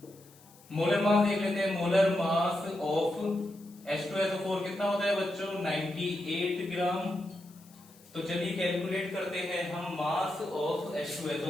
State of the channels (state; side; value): noise; left; hiss, 25 dB below the sound